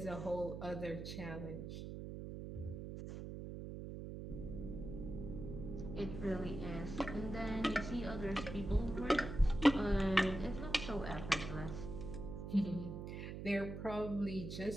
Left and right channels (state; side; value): noise; right; hum, 7 dB below the sound